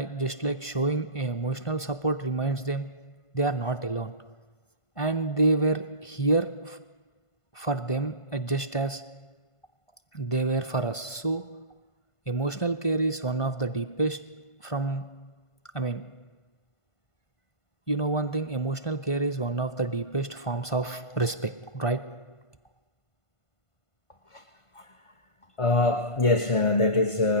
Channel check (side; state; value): right; late; 1.5 ms